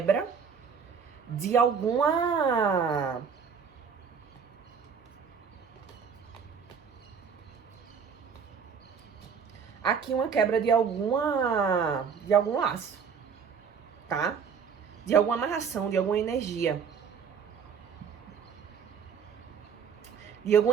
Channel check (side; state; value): left; quieter; 6.5 dB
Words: de alguma... Aqui uma quebra de algum laço, tá? De alguma amarração, de alguma energia. De